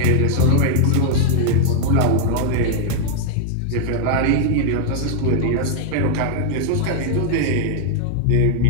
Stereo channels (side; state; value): both; different; correlation 0.00